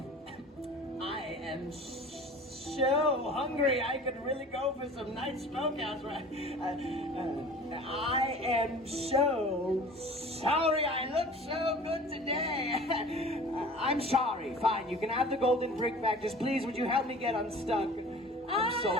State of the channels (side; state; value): both; normal; correlation 0.42